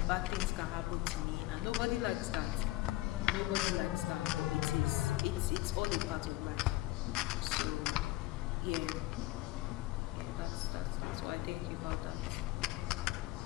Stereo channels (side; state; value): right; quieter; 18.0 dB